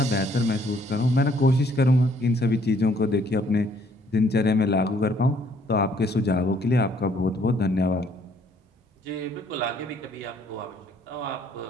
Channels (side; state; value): both; normal; correlation 0.64